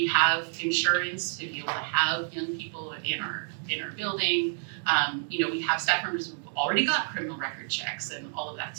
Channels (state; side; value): silent; left; 59 dB below the other